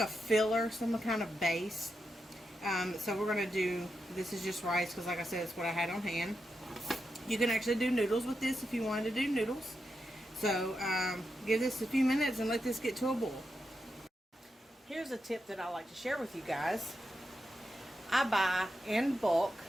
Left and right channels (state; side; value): normal; both; correlation 0.86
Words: filler, some kind of base. So we're going to do, this is just rice because like I said, it's what I had on hand. You can actually do noodles with this if you wanted to do noodles. So give this a few minutes and let this get to a boil. Here's a tip that I like to share with you guys. I buy in bulk